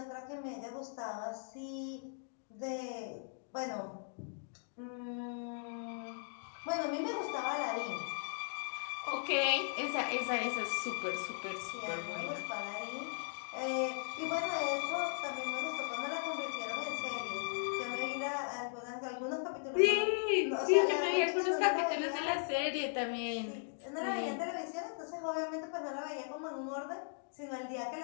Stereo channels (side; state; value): right; silent; digital silence